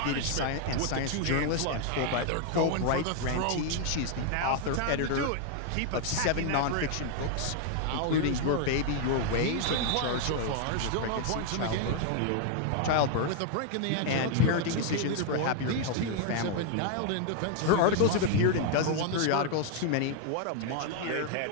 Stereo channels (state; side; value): different; both; correlation 0.00